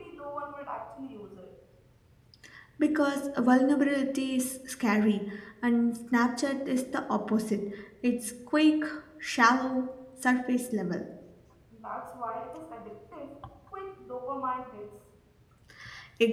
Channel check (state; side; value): identical; both; correlation 1.00